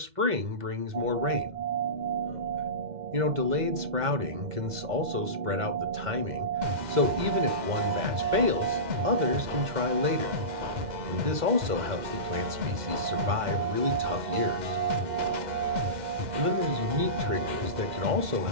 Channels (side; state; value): left; late; 2.0 ms